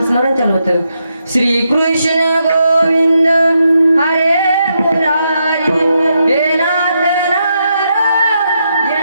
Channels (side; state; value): both; inverted; correlation -0.81